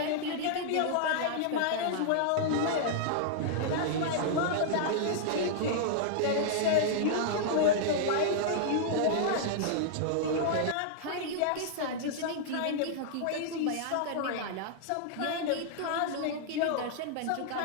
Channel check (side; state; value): both; different; correlation -0.01